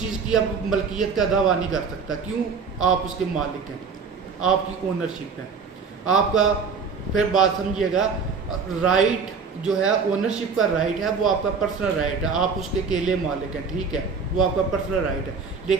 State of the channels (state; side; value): quieter; left; 5.4 dB